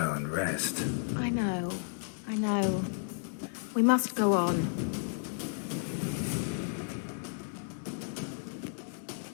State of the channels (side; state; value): right; silent; digital silence